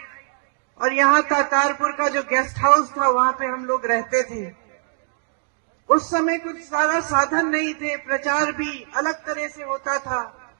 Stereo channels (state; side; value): silent; left; 62 dB below the other